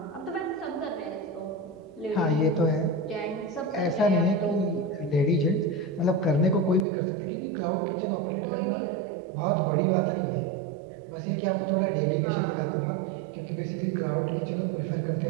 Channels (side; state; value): left; drops out; at 6.9 s